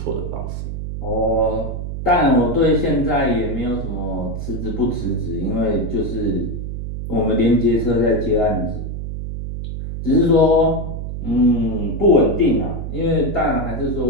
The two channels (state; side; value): noise; right; hum, 6 dB below the sound